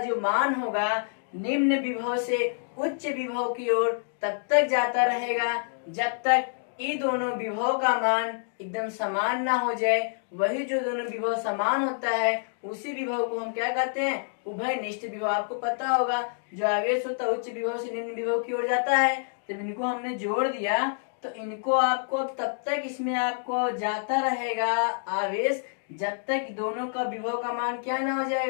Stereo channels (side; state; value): right; silent; digital silence